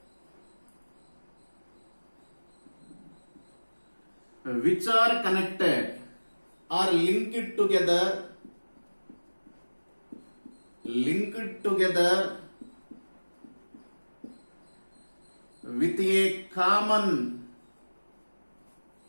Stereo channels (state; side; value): inverted; both; correlation -1.00